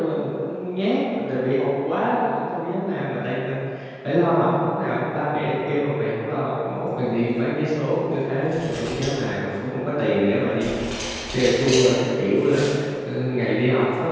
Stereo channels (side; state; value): both; identical; correlation 1.00